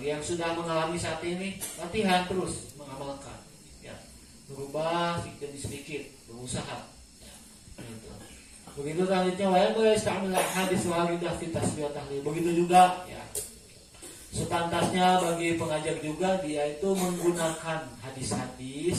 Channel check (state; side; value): identical; both; correlation 1.00